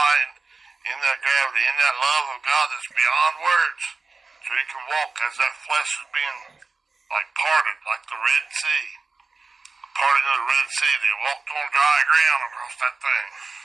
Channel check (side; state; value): left; quieter; 4.1 dB